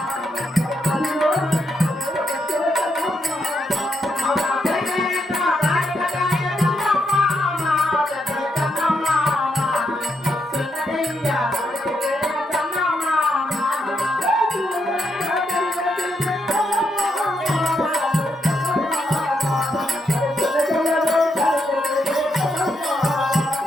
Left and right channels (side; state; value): both; normal; correlation 0.80